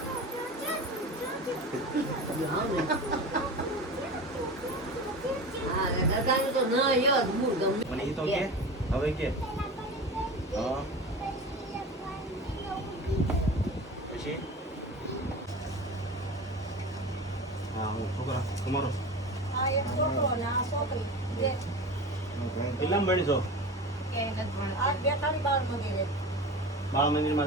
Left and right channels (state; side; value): normal; both; correlation 0.32